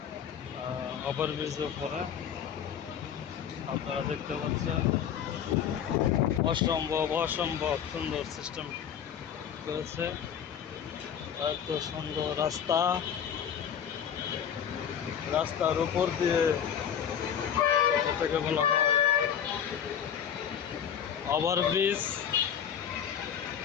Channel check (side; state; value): right; quieter; 8.7 dB